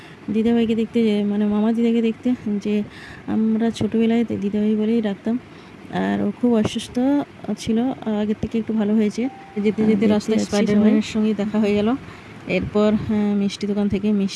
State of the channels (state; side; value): identical; both; correlation 1.00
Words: দিদাভাইকে দেখতে, মানে মামা দিদাকে দেখতে, যে আমরা ছোটোবেলায় দিদাভাই বলেই ডাকতাম। আর ও খুব অসুস্থ ছিল, আগের থেকে একটু ভালো হয়েছে। যেতে যেতে রাস্তায় স্পাইডারম্যানের সঙ্গে দেখা হয়ে গেল। এরপর মিষ্টি দোকান থেকে